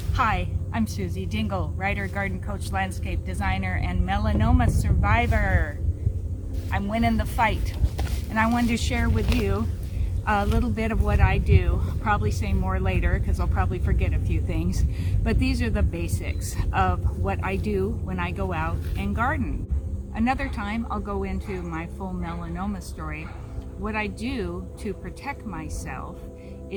Hi, I'm Susie Dingle, writer, garden coach, landscape designer, and melanoma survivor. I'm winning the fight, and I wanted to share with you a little bit of what I do. I'll probably say more later because I'll probably forget a few things, but these are the basics of what I do when I go out and garden. Another time I'll go into my full melanoma story. What I do to protect myself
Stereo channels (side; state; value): both; identical; correlation 1.00